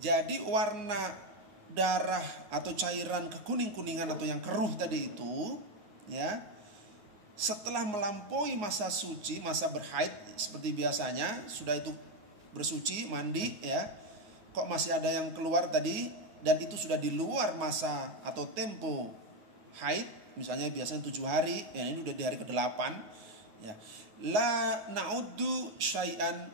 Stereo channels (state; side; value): late; left; 9.6 ms